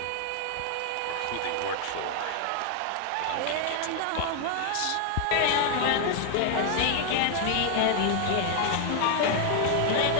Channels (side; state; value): both; different; correlation 0.00